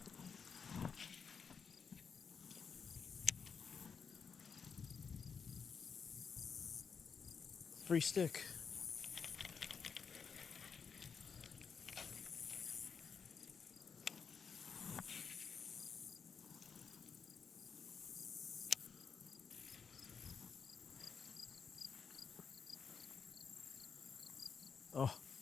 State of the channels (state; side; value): quieter; right; 6.1 dB